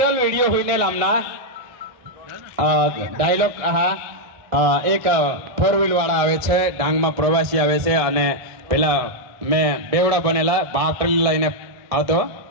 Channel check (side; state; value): left; late; 1.6 ms